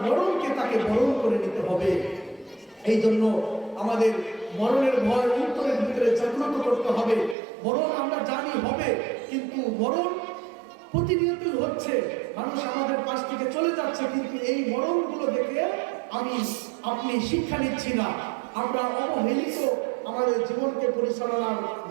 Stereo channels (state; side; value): drops out; left; at 7.4 s